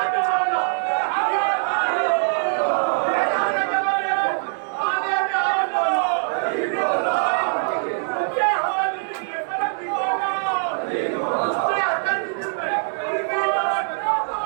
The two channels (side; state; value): left; silent; digital silence